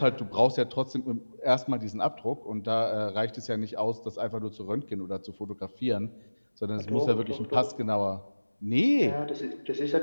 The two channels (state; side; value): inverted; both; correlation -1.00